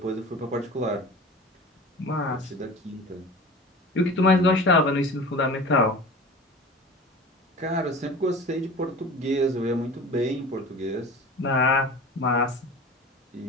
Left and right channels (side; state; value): both; normal; correlation 0.37